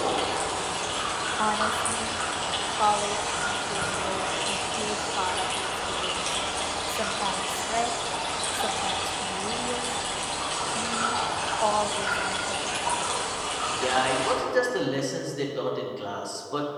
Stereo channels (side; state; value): both; identical; correlation 1.00